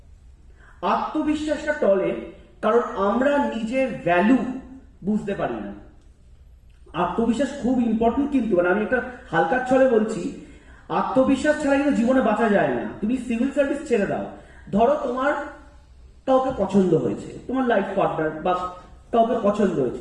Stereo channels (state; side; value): identical; both; correlation 1.00